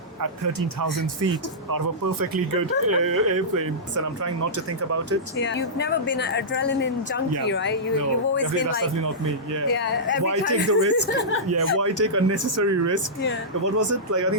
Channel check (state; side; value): normal; both; correlation -0.14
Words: at 13,000 feet out of a perfectly good airplane. And I'm trying not to think about it. Yeah. You've never been an adrenaline junkie, right? You've always been that's like, definitely not me. Yeah. Yeah, every Why time. take the risk? Yeah. Why take unnecessary risk? Yeah. What was it? Like I think